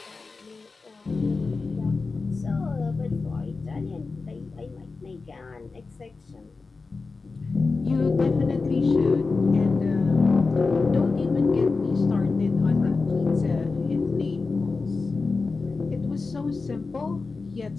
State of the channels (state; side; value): quieter; right; 4.1 dB